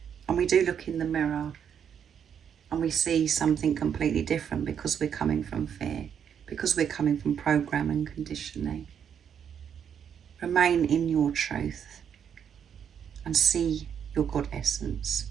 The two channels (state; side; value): quieter; left; 8.1 dB